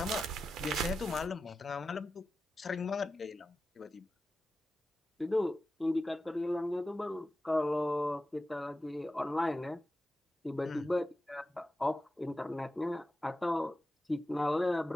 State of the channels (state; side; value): normal; both; correlation 0.93